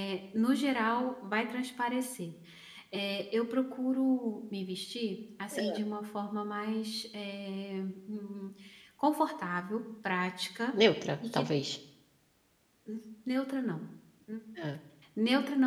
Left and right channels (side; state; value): both; identical; correlation 1.00